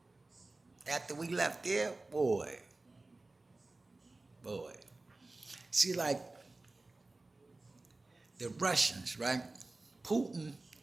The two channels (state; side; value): quieter; left; 3.1 dB